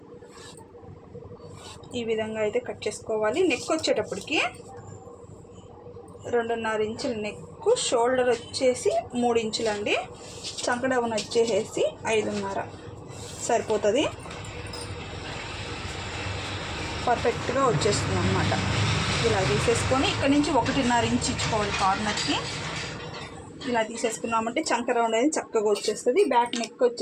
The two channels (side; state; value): both; identical; correlation 1.00